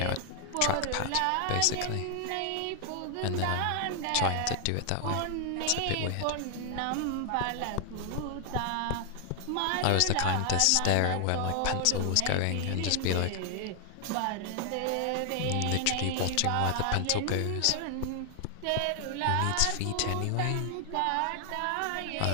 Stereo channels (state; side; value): different; both; correlation 0.00